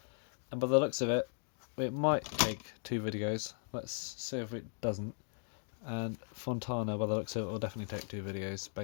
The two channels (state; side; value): silent; right; digital silence